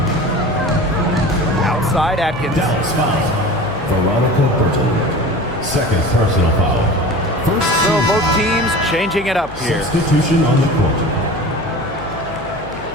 Outside Atkins. Dallas foul. Veronica Burton. Second personal foul. First So both teams changing it up here. substitution on the court.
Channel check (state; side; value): noise; left; hum, 15 dB below the sound